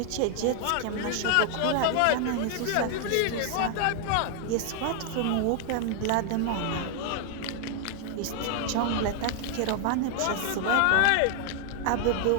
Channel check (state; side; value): different; both; correlation 0.00